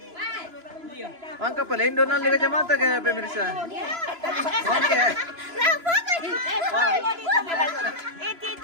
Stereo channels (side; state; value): left; late; 3.0 ms